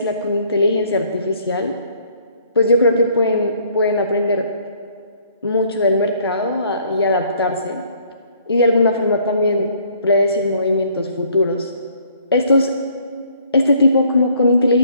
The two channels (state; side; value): inverted; both; correlation -0.62